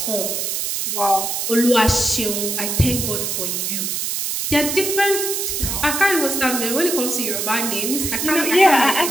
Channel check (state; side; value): noise; right; hiss, 1 dB below the sound